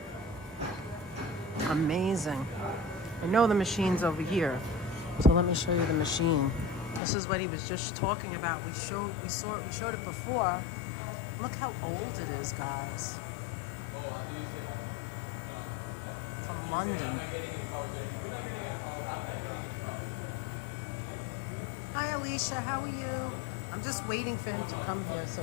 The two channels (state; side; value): drops out; right; at 7.0 s